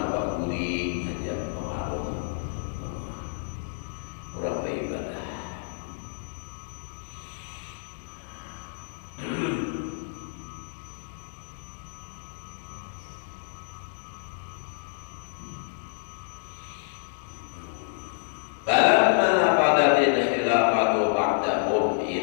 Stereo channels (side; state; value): right; silent; digital silence